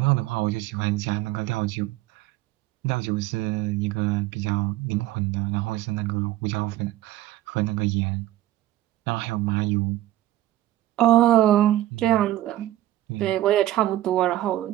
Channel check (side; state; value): left; quieter; 14.5 dB